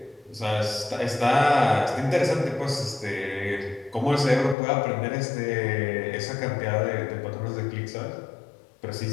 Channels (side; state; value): right; drops out; at 4.5 s